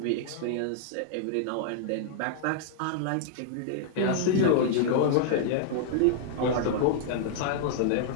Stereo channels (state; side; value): different; both; correlation -0.01